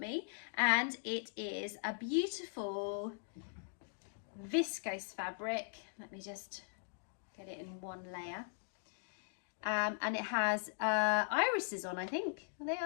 and it is a beautiful viscose fabric. Let me just get it in one layer. And it has irises on, I think. Are they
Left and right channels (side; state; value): right; silent; digital silence